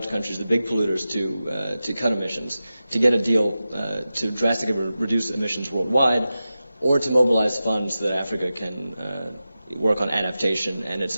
countries, the big polluters, to cut emissions, to get a deal to drastically reduce emissions worldwide, or to mobilize funds so that Africa can work on adaptation and its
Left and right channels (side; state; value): both; inverted; correlation -0.93